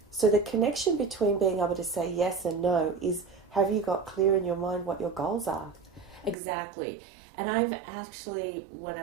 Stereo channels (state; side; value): drops out; left; at 6.4 s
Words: So the connection between being able to say yes and no is, have you got clear in your mind what your goals are? Exactly. And I've actually, when